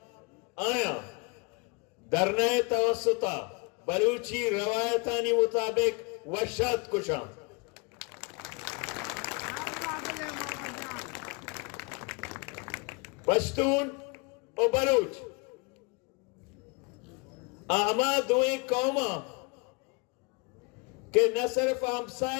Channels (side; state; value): right; quieter; 29.8 dB